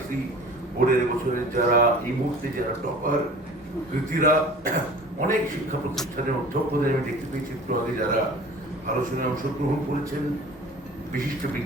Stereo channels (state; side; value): normal; both; correlation 0.43